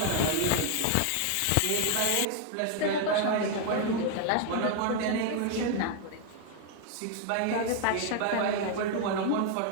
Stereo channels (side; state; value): both; different; correlation 0.00